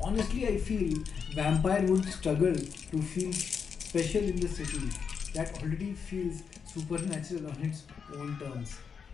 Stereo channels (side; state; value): right; quieter; 6.3 dB